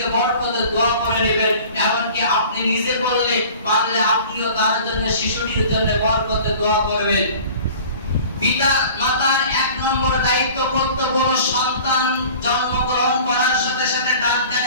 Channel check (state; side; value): inverted; both; correlation -0.44